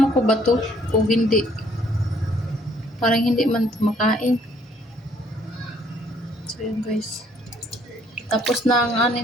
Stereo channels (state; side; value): normal; both; correlation 0.63